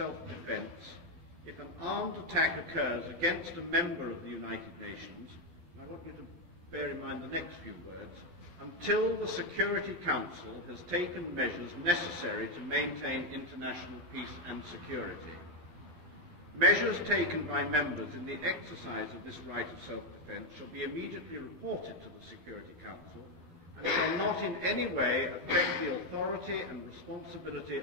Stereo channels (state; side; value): late; left; 12 ms